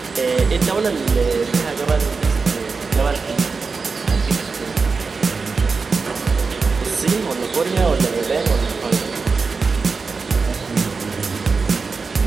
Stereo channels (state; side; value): quieter; left; 4.6 dB